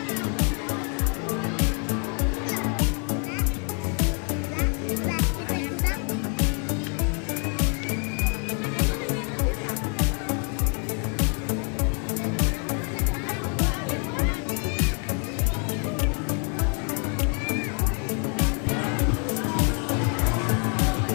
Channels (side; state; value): right; quieter; 39.7 dB